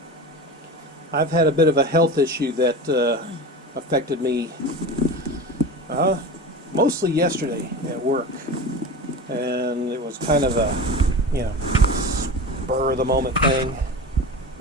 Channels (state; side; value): normal; both; correlation 0.30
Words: I've had a bit of a health issue that affected me mostly yesterday at work. And it was kind of a, spur of the moment thing.